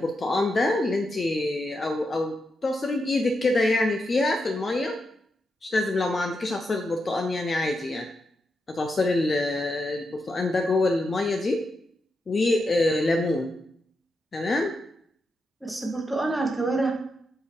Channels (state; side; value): normal; both; correlation 0.85